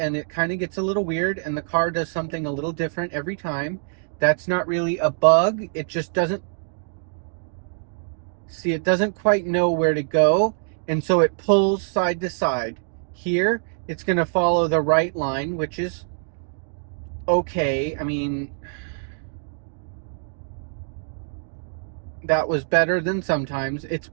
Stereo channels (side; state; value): left; silent; digital silence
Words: it kind of gets a little weird, and the car does something a little different every time. That's not really a bug. It just doesn't see, it doesn't quite know where to go, and so it pulls side to side. Here, it's going to follow the right line, which is okay. I mean, that was better than sometimes. It's